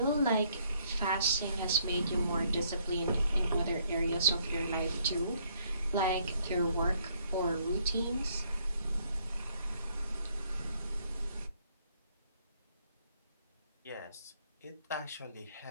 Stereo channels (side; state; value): both; inverted; correlation -0.67